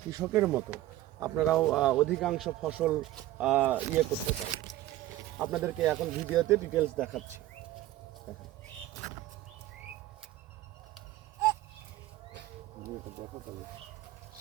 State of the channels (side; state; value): left; quieter; 15.1 dB